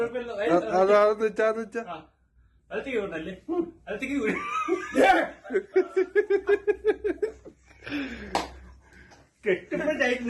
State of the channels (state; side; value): identical; both; correlation 1.00